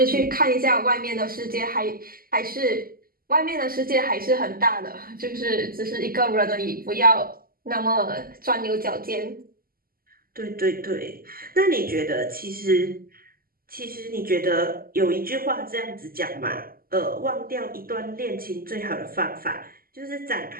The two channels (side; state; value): left; late; 0.42 ms